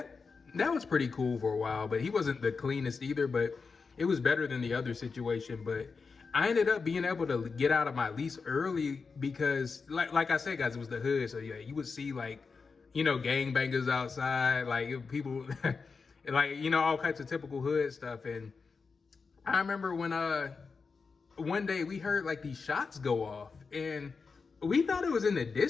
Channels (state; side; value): quieter; right; 4.9 dB